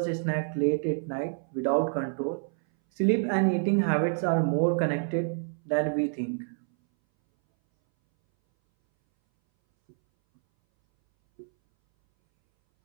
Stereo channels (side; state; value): left; silent; 60 dB below the other